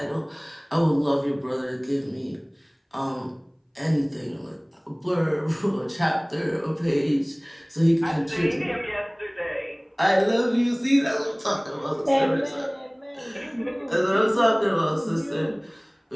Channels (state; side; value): identical; both; correlation 1.00